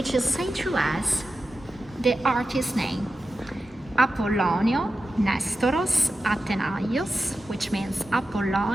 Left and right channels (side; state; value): both; normal; correlation 0.92